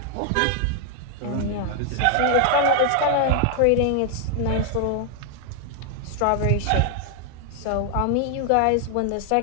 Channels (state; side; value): different; both; correlation 0.00